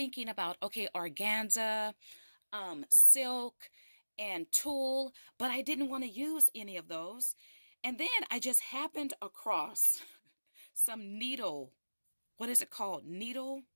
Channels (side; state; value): both; inverted; correlation -1.00